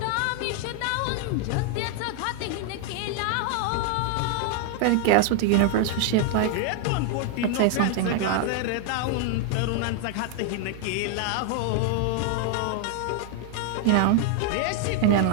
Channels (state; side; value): different; both; correlation 0.00